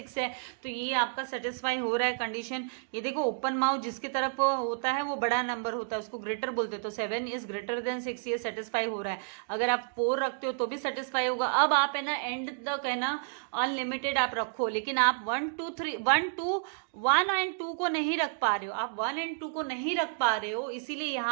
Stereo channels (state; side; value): silent; left; digital silence